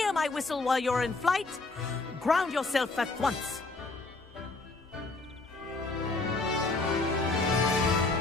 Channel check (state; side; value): quieter; right; 3.4 dB